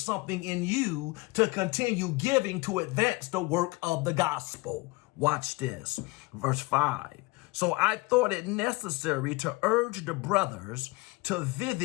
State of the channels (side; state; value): right; quieter; 23.9 dB